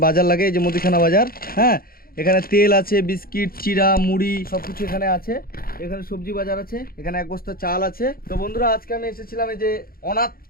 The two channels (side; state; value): right; late; 0.43 ms